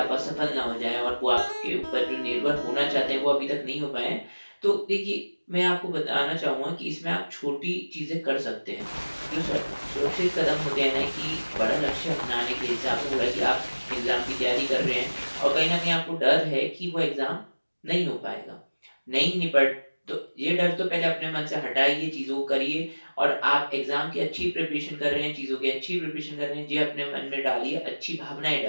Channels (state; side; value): inverted; both; correlation -1.00